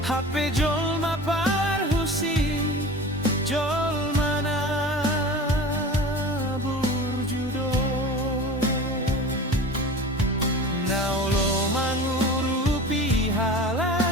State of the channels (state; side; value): normal; both; correlation 0.35